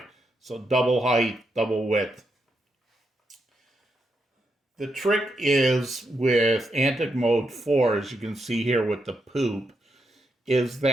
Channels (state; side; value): normal; both; correlation 0.82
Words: So double height, double width. The trick is with Antic Mode 4, as you can see here with the poop, is